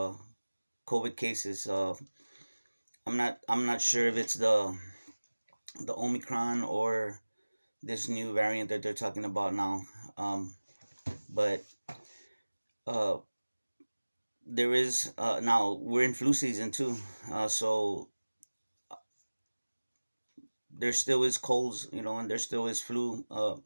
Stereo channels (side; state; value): both; inverted; correlation -1.00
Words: COVID cases. I'm not sure if it's the Omicron or this new variant that they're talking about now. But uh, there is now we're in flu season too, so there still is colds, and there still is flu.